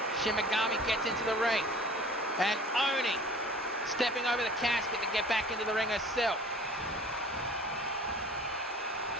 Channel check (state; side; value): normal; both; correlation 0.46